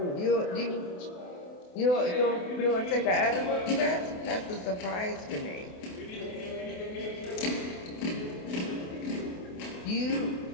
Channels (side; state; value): right; late; 28 ms